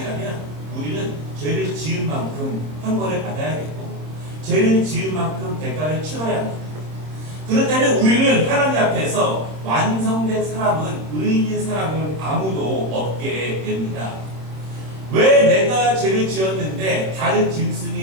우리는 죄를 지은 만큼 형벌을 받아야겠고 죄를 지은 만큼 대가를 치러야 합니다. 그렇다면 우리는 하나님 앞에서 완성된 사람은 의인인 사람은 아무도 없게 됩니다. 왜 내가 죄를 지었는데 다른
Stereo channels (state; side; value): late; left; 26 ms